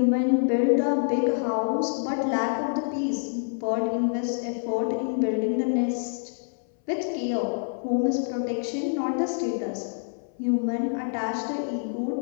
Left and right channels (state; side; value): silent; right; 59 dB below the other